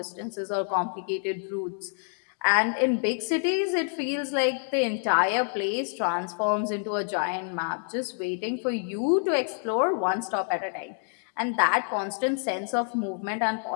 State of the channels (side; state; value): right; silent; 57 dB below the other